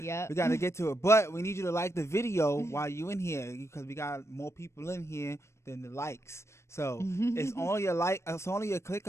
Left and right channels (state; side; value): late; right; 0.13 ms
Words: We gotta get to it, but we need you to like the video while you in here because we got more people in here than the likes. So it's only it's only a click